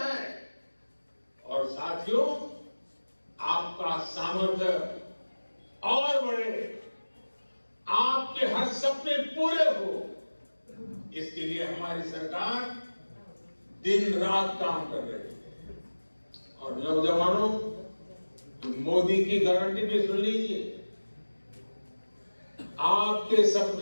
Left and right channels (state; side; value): inverted; both; correlation -1.00